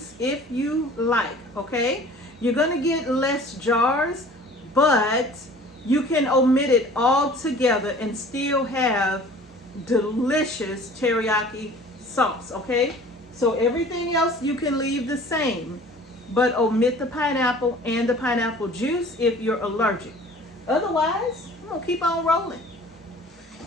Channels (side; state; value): both; normal; correlation 0.47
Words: if you like, okay? You're going to get less jars, but you can omit it all together and still have delicious teriyaki sauce, okay? So everything else you can leave the same, but omit the pineapple and the pineapple juice if you're allergic. Otherwise, I'm going to keep on rolling.